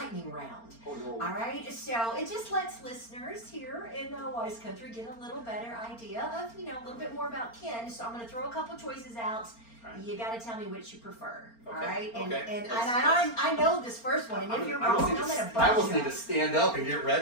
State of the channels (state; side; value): late; right; 4.4 ms